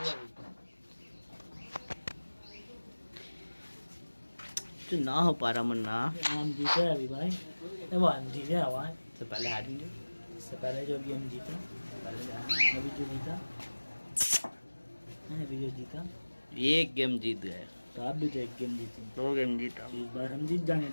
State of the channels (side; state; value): both; inverted; correlation -1.00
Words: तो ना हो पा रहा मन्ना हम जीते अभी भाई वो हम जीते भाई से पहले हारेंगे इससे पहले जो भी हम जीता अभी जो जीता अभी जो जीता एक गेम जीत गए तो आप भी तो एक गेम जीते 2 गेम जीता इस बार हम जीत जाएंगे